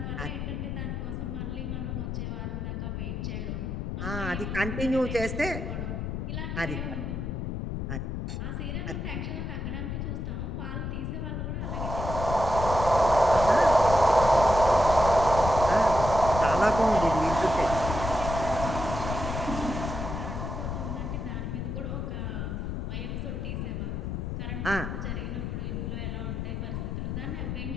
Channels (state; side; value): noise; left; rumble, 4 dB below the sound